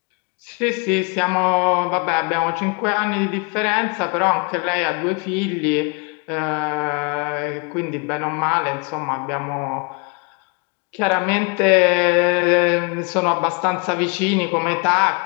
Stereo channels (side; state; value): right; quieter; 33.0 dB